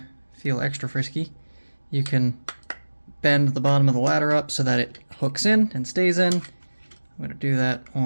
feel extra frisky, you can bend the bottom of the ladder up so that it hooks in and stays in. I'm going to do that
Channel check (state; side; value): inverted; both; correlation -1.00